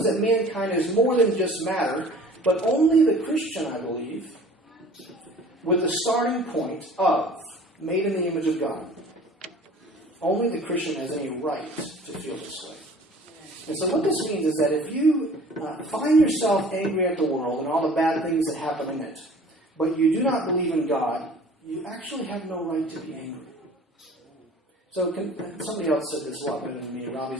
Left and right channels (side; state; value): both; normal; correlation 0.47